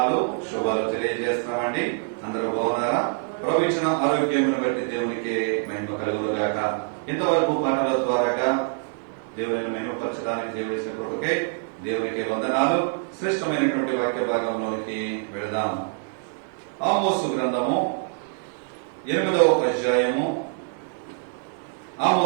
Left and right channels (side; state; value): left; silent; 62 dB below the other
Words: శుభాలు తెలియజేస్తున్నామండి. అందరూ బాగున్నారా? ప్రభు ఇచ్చిన ఆరోగ్యమును బట్టి దేవునికి మహిమ కలుగును గాక. ఇంతవరకు పాటల ద్వారాగా దేవుని మహిమపరచడానికి దేవుడి కృపకై దేవునికి వందనాలు. శ్రేష్టమైనటువంటి వాక్య భాగంలోనికి వెళదాం. ఆమోసు గ్రంథము 8వ అధ్యాయము.